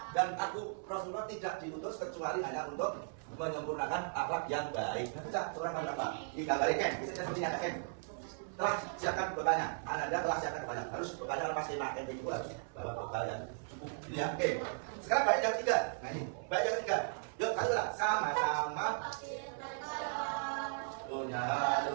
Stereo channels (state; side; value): silent; left; 53 dB below the other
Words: Dan aku Rasulullah tidak diutus kecuali hanya untuk menyempurnakan akhlak yang baik. Baca surah Al-Baqarah. Tidak balik kan? Bisa seperti yang kan? Telah siapkan bekalnya. Anda telah siapkan bekalnya. Harus bekalnya pasti makan yang dua. Bawa bekal yang cukup. Ini ya. Oke. Sekarang baik yang ketiga. Nah ini. Baik yang ketiga. Yuk, kalian sama-sama punya